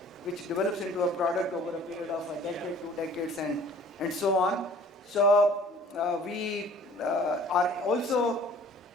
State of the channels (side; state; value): both; normal; correlation 0.51